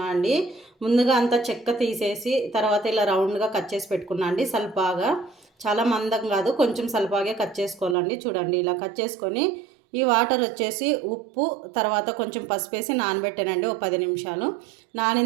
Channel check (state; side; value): drops out; left; at 8.0 s